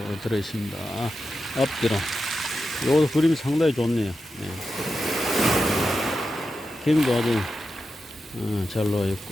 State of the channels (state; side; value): normal; both; correlation 0.90